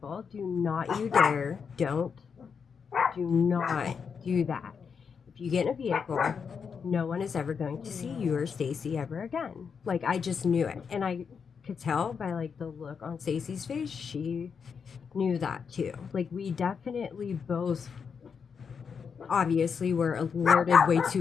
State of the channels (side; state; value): right; quieter; 6.2 dB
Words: Do not you dare. Do not do that. If you get in a vehicle, no one is ever going to see you or Stacy ever again. Like, I just knew it. And I could tell by like the look on Stacy's face, she knew that too. Like we definitely both obviously were alerted way